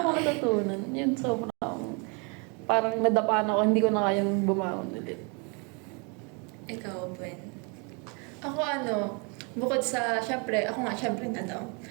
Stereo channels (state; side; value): quieter; left; 34.0 dB